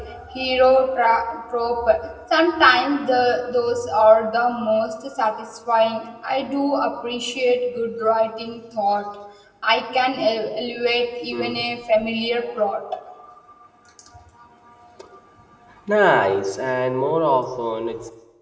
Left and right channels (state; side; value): identical; both; correlation 1.00